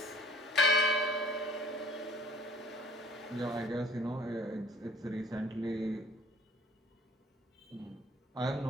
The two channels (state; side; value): normal; both; correlation 0.52